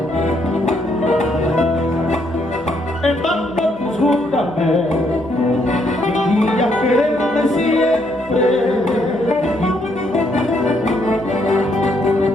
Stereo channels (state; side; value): noise; left; hum, 25 dB below the sound